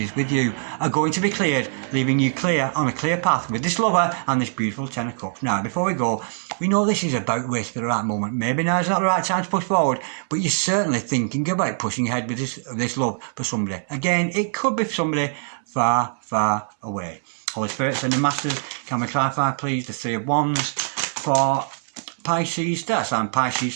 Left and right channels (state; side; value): silent; left; 63 dB below the other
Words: with you are going to be cleared, leaving you clear on a clear path with this lover and this beautiful Ten of Cups. Now, before we go, we know this is about to wait for the right moment. Maybe now is not the right time to push forward, but you're certainly thinking about pushing ahead with this love for somebody. Again, it could be somebody far, far away. Holy Spirit, Sending Masters, can we clarify, please, the Three of Wands for Pisces, that's and Pisces,